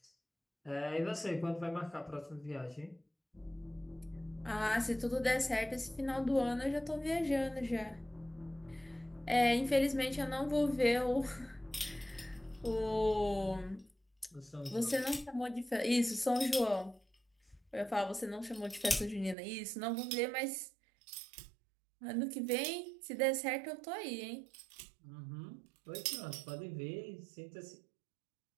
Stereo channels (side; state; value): left; drops out; at 19.4 s